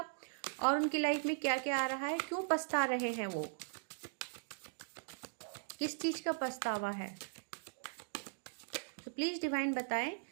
और उनकी लाइफ में क्या क्या आ रहा है, क्यों पछता रहे हैं वो, किस चीज़ का पछतावा है। तो प्लीज़ डिवाइन बताएं।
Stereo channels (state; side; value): silent; left; digital silence